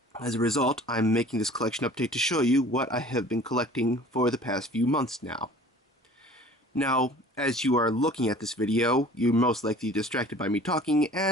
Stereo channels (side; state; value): both; normal; correlation 0.47